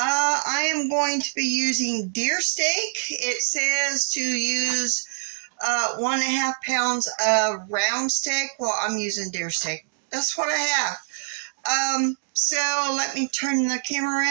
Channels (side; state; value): left; silent; digital silence